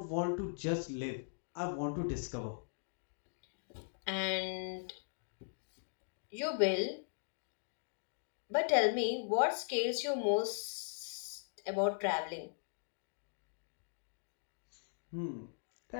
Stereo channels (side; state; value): right; silent; digital silence